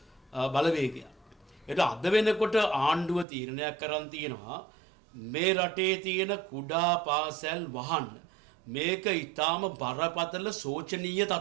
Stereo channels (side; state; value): left; drops out; at 3.2 s